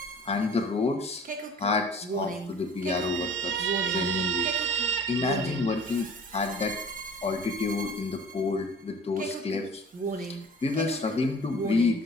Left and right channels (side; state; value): both; normal; correlation 0.46